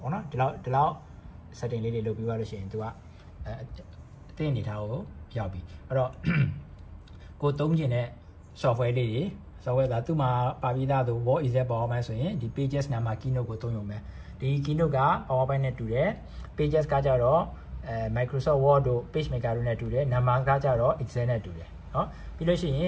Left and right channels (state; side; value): identical; both; correlation 1.00